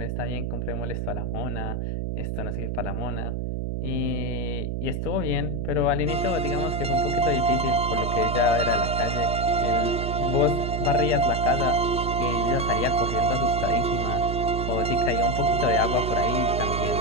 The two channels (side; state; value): right; noise; hum, 2 dB below the sound